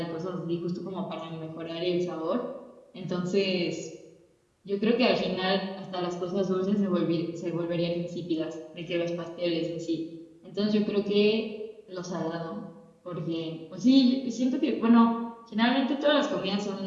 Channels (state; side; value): identical; both; correlation 1.00